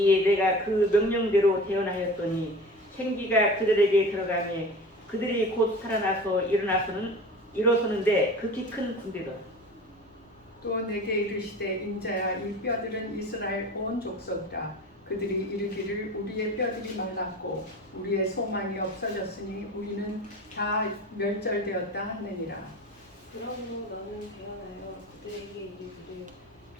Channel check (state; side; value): normal; both; correlation 0.36